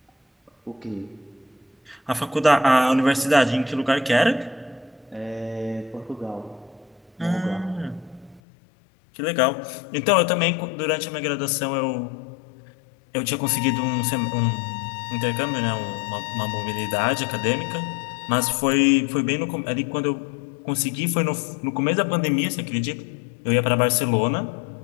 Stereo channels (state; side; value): drops out; right; at 8.4 s